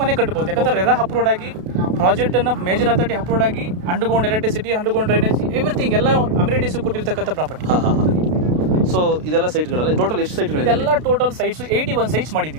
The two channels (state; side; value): late; left; 32 ms